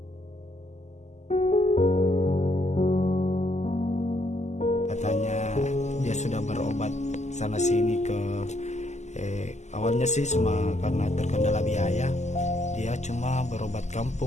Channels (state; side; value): late; right; 0.33 ms